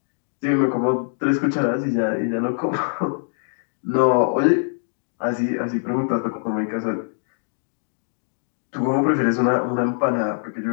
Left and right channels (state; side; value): silent; right; digital silence